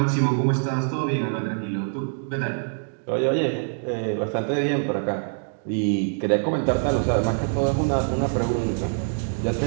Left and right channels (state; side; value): silent; left; digital silence